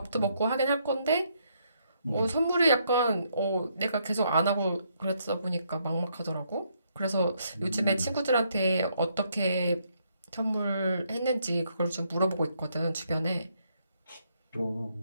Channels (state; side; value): inverted; both; correlation -0.73